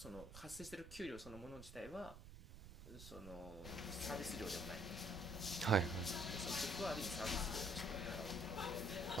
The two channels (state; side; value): noise; right; rumble, 13 dB below the sound